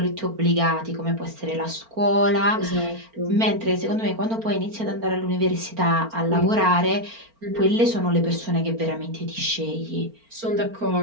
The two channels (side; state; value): left; late; 4.4 ms